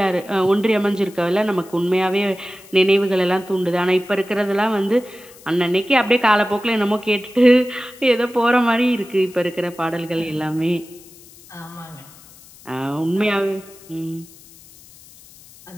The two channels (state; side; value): noise; left; hiss, 23 dB below the sound